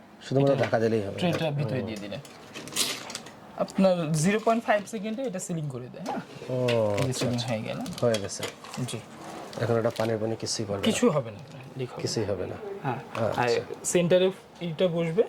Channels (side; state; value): both; identical; correlation 1.00